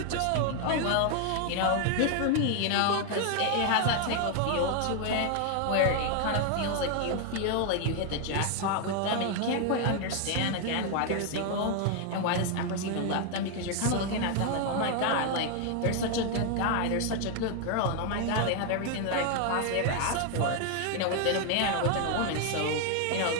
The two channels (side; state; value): both; different; correlation 0.00